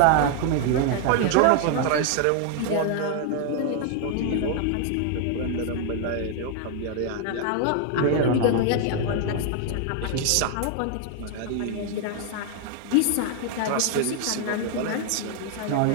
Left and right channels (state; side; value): different; both; correlation 0.00